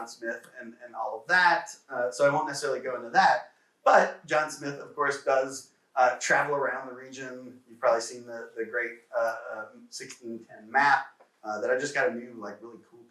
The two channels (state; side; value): identical; both; correlation 1.00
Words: Smith and all of that. So I won't necessarily go into that. But John Smith, of course, does travel around the region. You've probably seen the great 1610 map that I just got a new, really cool